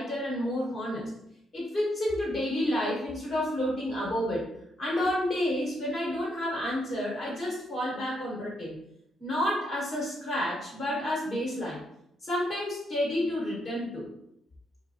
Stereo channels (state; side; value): normal; both; correlation 0.77